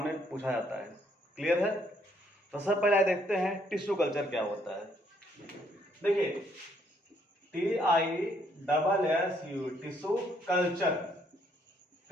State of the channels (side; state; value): both; normal; correlation 0.69